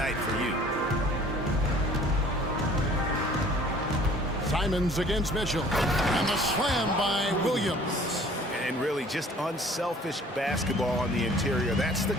for you. Simons against Mitchell. And the slam by Williams. And really just unselfish basketball on the interior. That's the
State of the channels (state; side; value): normal; both; correlation 0.52